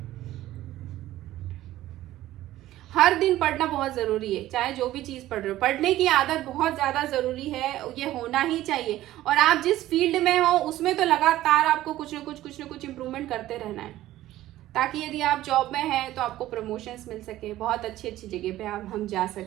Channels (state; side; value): quieter; left; 14.8 dB